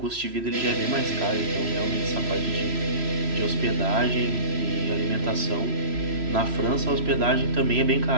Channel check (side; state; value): left; late; 3.0 ms